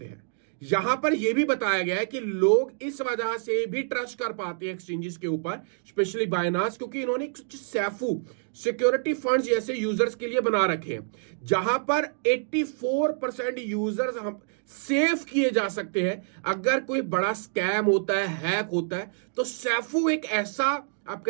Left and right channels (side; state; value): left; silent; 59 dB below the other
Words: हैं। यहां पर यह भी बताया गया है कि लोग इस वजह से भी ट्रस्ट कर पाते हैं एक्सचेंजेस के ऊपर, स्पेशली बाइनांस, क्योंकि इन्होंने सैफू सिक्योरिटी फंड्स जैसे यूजर्स के लिए बना रखे हैं, जहां पर 84% यूजर्स हम सेफ किए जा सकते हैं। अगर कोई बड़ा स्कैम होता है, हैक होता है, तो सैफू एक ऐसा आप